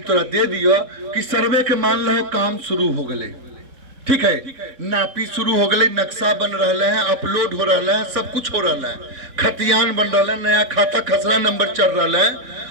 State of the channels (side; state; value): left; late; 3.6 ms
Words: तोरा दे दियो कि सर्वे के मान लो काम शुरू हो गए, ठीक है, नापी शुरू हो गए, नक्शा बन रहा है, अपलोड हो रहा है, सब कुछ हो रहा है, खतियान बन रहा है, नया खाता खसरा नंबर चल रहा है।